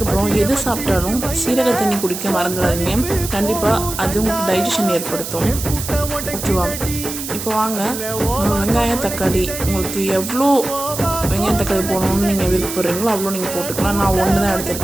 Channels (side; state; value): right; noise; hiss, 7 dB below the sound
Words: எது சாப்பிட்டாலும் சீரக தண்ணி குடிக்க மறந்துடாதீங்க. கண்டிப்பாக அது உங்களுக்கு டைஜஷன் ஏற்படுத்தும். ஓகேவா? இப்போ வாங்க, வெங்காயம் தக்காளி உங்களுக்கு எவ்வளோ வெங்காயம் தக்காளி போடணும்னு நீங்கள் விருப்பப்படுறீங்களோ அவ்வளோ நீங்கள் போட்டுக்கலாம். நான் ஒன்று தான்